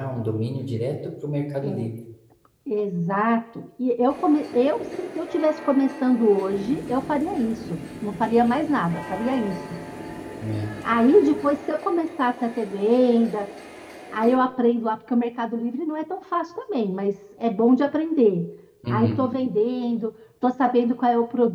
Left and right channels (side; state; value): both; identical; correlation 1.00